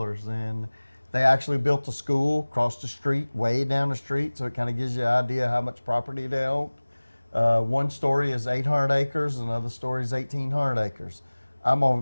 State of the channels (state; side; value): inverted; both; correlation -1.00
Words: and they actually built a school across the street, way down the street, so it kind of gives you an idea how much property they owned. One story is 800 acres, another story is 1,800 acres. I'm